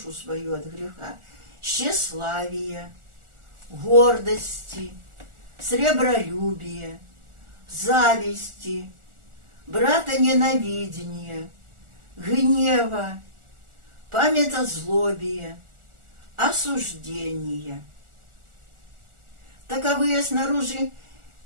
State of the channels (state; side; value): late; left; 1.4 ms